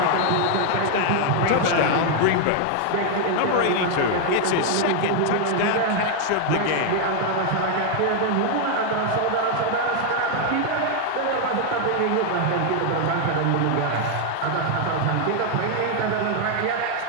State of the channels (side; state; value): both; different; correlation 0.00